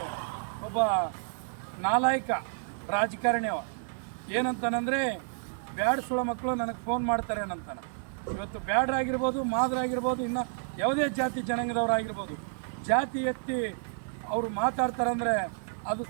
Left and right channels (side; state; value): left; silent; digital silence